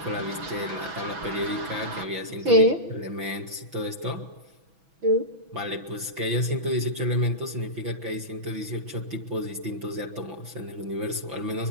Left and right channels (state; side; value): late; left; 6.1 ms